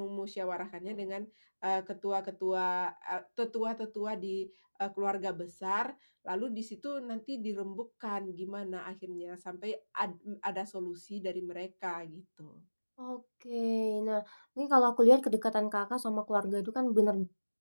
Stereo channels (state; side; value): inverted; both; correlation -1.00